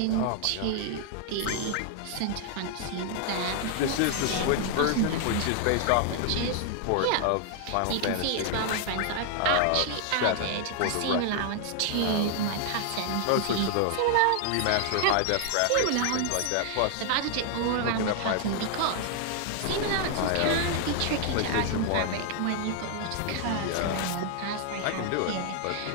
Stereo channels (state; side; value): different; both; correlation 0.00